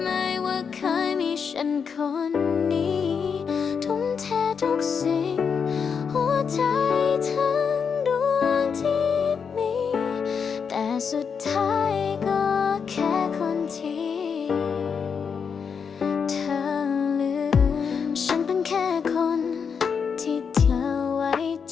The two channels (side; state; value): right; quieter; 6.3 dB